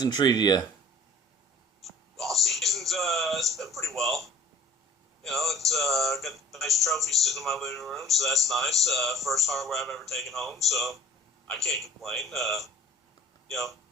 treated you? Off season's it's been pretty well. It's got a nice trophy sitting in my living room, so that's nice. First hardware I've ever taken home, so I can't complain.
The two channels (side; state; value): both; normal; correlation 0.49